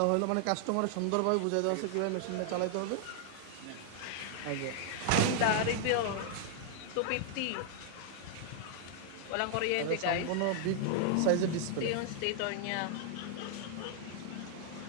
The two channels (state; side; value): different; both; correlation -0.01